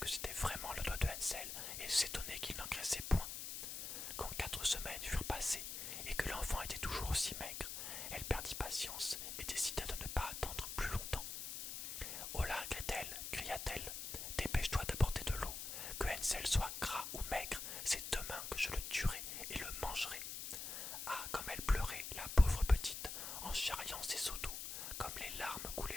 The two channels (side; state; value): left; noise; hiss, 6 dB below the sound